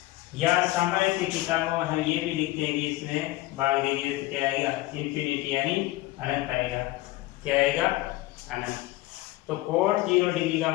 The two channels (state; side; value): quieter; right; 18.1 dB